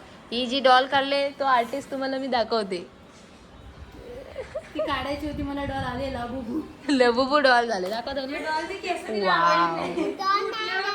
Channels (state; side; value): identical; both; correlation 1.00